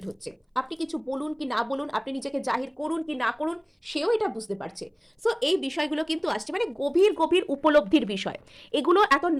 হচ্ছে। আপনি কিছু বলুন কি না বলুন, আপনি নিজেকে জাহির করুন কি না করুন, সেও এটা বুঝতে পারছে। সো এই বিষয়গুলো কিন্তু আসছে, মানে গভীর গভীর উপলব্ধির বিষয়। এগুলো এত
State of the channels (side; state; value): both; identical; correlation 1.00